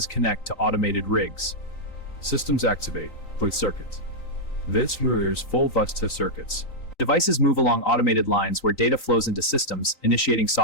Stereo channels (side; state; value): right; late; 3.9 ms